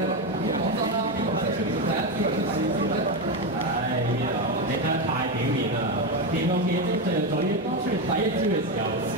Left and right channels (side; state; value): both; normal; correlation 0.12